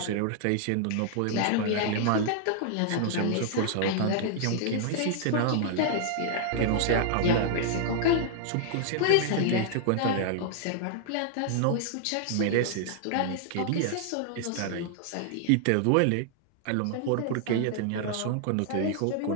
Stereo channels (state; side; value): different; both; correlation -0.01